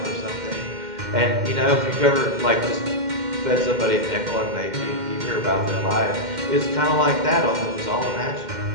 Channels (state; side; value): late; left; 2.1 ms